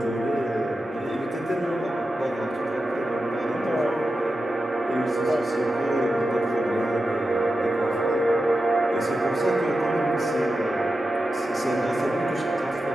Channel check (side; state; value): both; normal; correlation 0.91